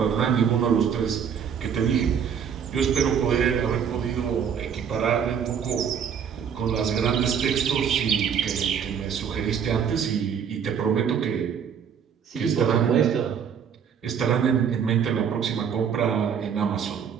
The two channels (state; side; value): quieter; left; 7.6 dB